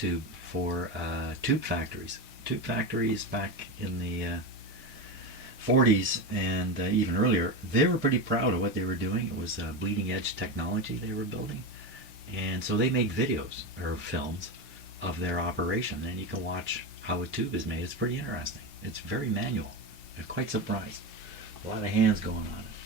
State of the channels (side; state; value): both; normal; correlation 0.18